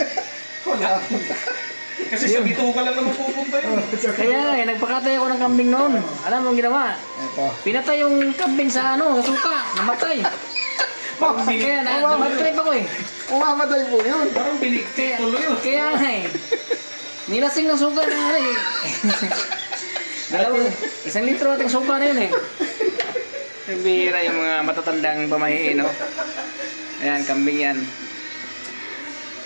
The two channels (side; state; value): both; inverted; correlation -1.00